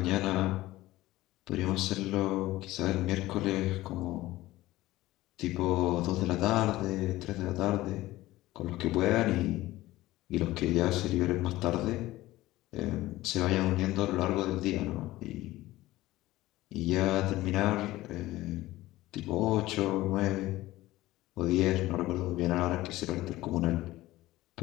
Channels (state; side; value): quieter; right; 17.2 dB